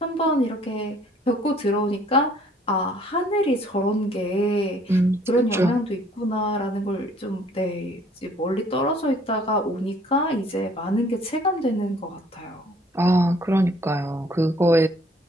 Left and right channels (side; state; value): both; normal; correlation 0.58